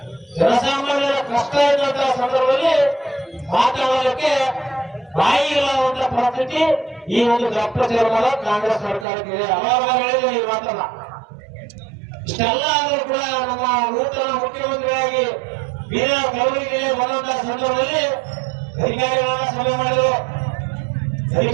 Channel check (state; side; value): drops out; left; at 9.1 s